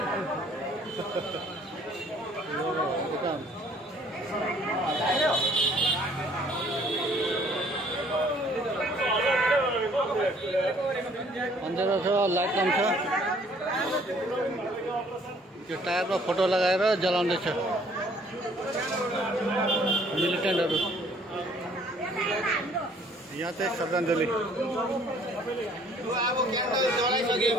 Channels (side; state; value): both; normal; correlation 0.59